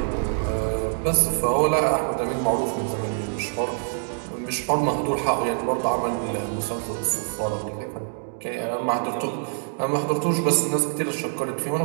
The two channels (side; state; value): left; silent; 62 dB below the other